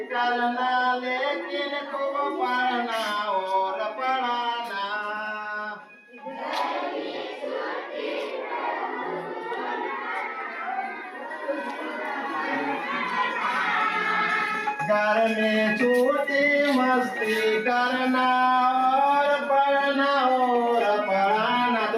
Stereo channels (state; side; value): identical; both; correlation 1.00